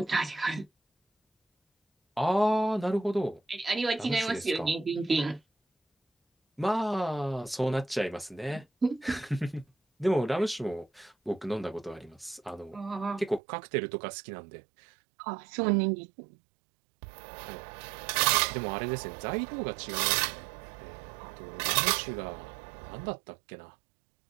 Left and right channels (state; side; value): drops out; left; at 13.4 s